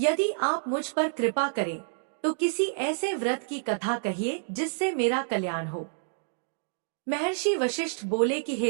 आप मुझ पर कृपा करें तो किसी ऐसे व्रत की कथा कहिए जिससे मेरा कल्याण हो। महर्षि वशिष्ठ बोले कि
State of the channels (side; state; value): left; silent; digital silence